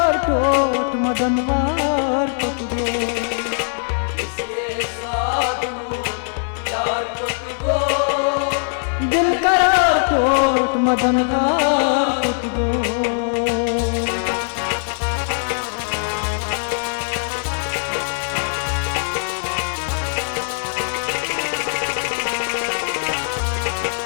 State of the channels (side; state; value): right; silent; digital silence